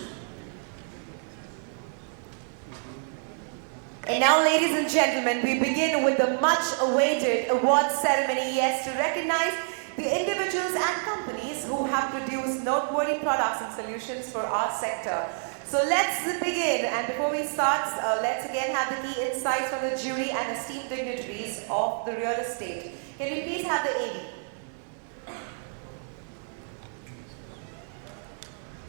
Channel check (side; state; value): left; silent; digital silence